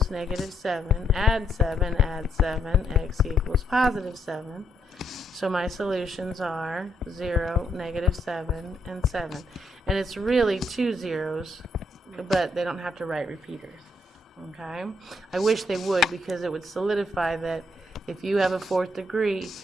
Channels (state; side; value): normal; both; correlation 0.76